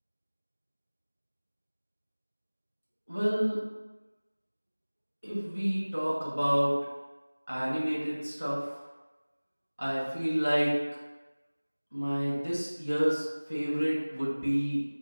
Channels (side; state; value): both; inverted; correlation -1.00